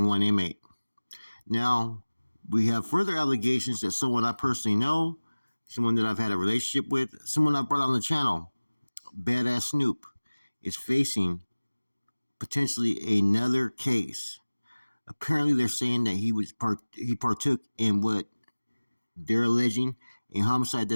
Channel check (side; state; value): both; inverted; correlation -1.00